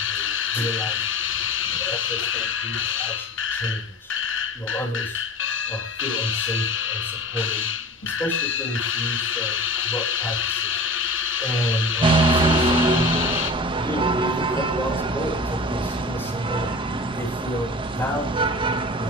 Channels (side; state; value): both; normal; correlation 0.36